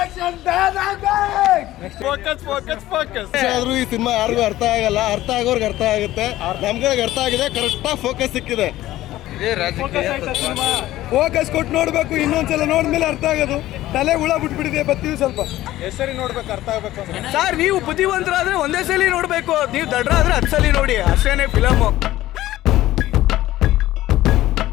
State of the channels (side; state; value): right; quieter; 15.3 dB